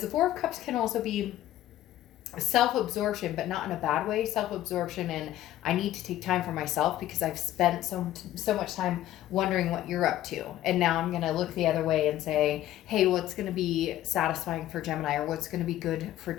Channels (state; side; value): quieter; right; 13.5 dB